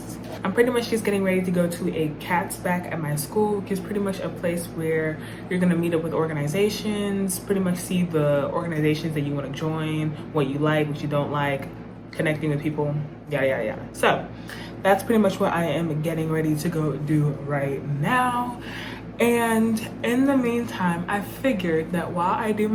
I'm pretty much just getting ready to go to a CATS back at my school, which is pretty much a place where you're gonna meet up with organizations, pretty much see the organizations that you wanna join, what you like, what you don't like, connecting with people, yada, yada, yada. So that's pretty much what I am getting ready to go do right now. And in the meantime, I figured that while I do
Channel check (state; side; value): identical; both; correlation 1.00